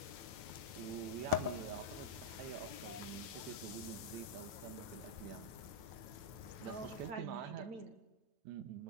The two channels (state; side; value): late; left; 9.0 ms